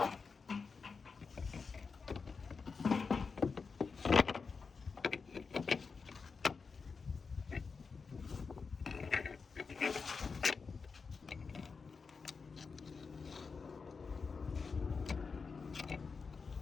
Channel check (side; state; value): right; quieter; 5.0 dB